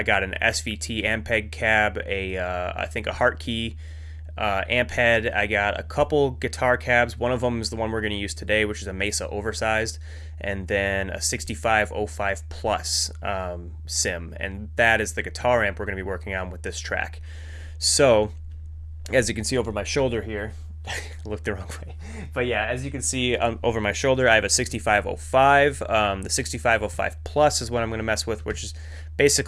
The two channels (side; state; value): both; identical; correlation 1.00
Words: got an SVT Ampeg cab, I think a Hartkey amp head. I got a couple guitar cabs. One of them is the one we're going to use today, which is a Mesa oversized, and then a 6505 Plus sim, and that is the guitar amp we're going to be working on with this track. So, as you can see over my shoulder here, look the wrong way, but yeah, as you can see over my shoulder, I have a 6505. The 6505 Plus is what I'm going to mess with, which is